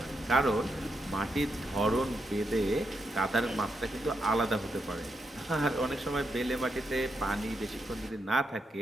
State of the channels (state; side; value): normal; both; correlation 0.82